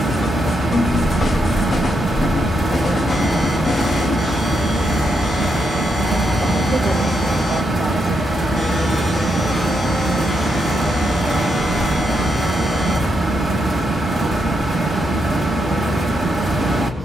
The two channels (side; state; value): both; normal; correlation 0.81